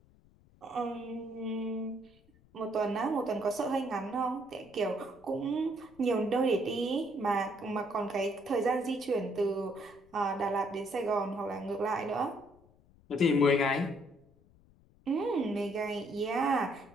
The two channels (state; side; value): noise; left; rumble, 29 dB below the sound